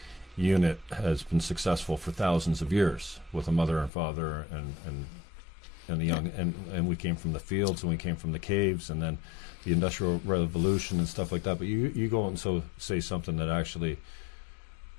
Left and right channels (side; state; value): right; drops out; at 3.9 s